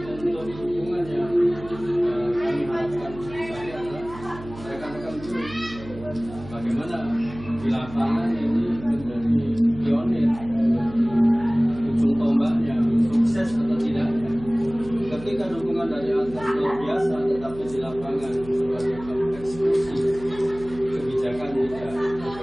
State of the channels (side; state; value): right; noise; hum, 16 dB below the sound